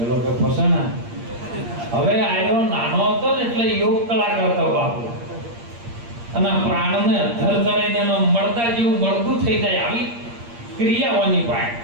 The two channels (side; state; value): left; late; 8.6 ms